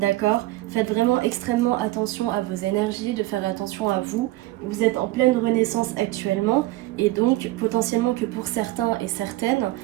Faites vraiment extrêmement attention à vos énergies, de faire attention à vous. Vous êtes en pleine renaissance actuellement et donc potentiellement que pour certains et certaines,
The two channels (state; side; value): quieter; left; 18.0 dB